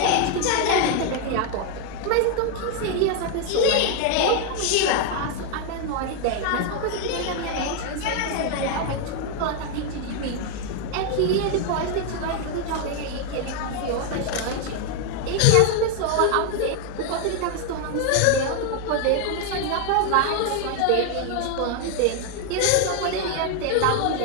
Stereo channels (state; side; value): different; both; correlation 0.01